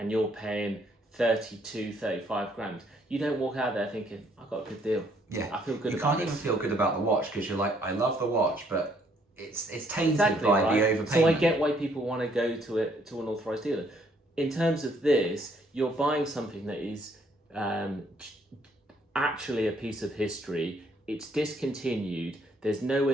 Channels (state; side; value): normal; both; correlation 0.67